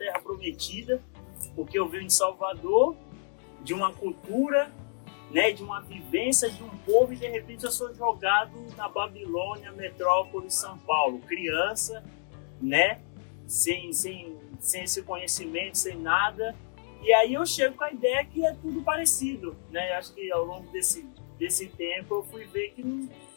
Prometida, porque eu venho de Salvador, de uma cultura, né? De uma vivência de um povo, e de repente eu sou jogado na Babilônia, metrópole, São Paulo, criança, né? Sem esse conhecimento, sem nada. E aí eu chego com a ideia que é tudo parecido, né? Acho que ao longo desse tempo eu fui ver que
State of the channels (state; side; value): silent; right; digital silence